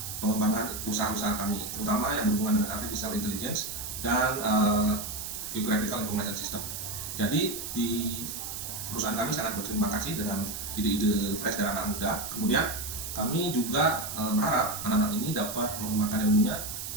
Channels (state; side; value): noise; right; hiss, 6 dB below the sound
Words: pengembangan usaha-usaha kami, terutama yang berhubungan dengan artificial intelligence dan geographical information system. Jadi di perusahaan kami sangat berterima kasih dengan ide-ide fresh dari anak muda. Kemudian kami juga berharap anak-anak ini dapat mengembangkan ilmunya,